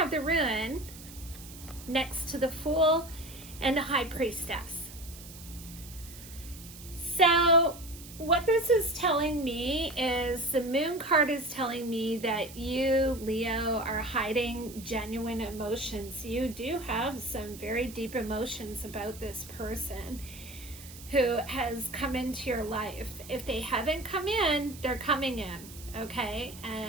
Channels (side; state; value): right; noise; hiss, 16 dB below the sound